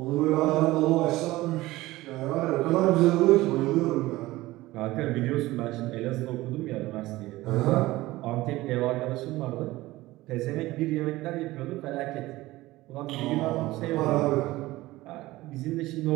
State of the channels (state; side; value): quieter; left; 18.3 dB